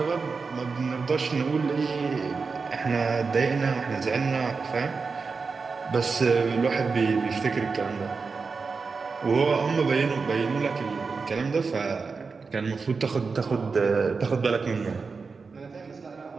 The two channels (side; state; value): left; quieter; 4.7 dB